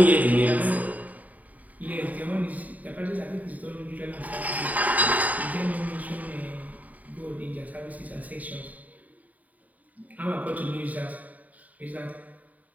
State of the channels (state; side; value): late; left; 0.074 ms